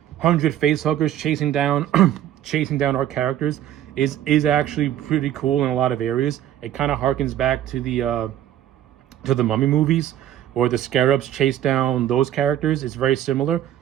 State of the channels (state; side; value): quieter; left; 11.6 dB